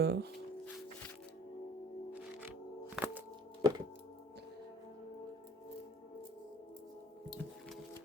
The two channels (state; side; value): normal; both; correlation 0.50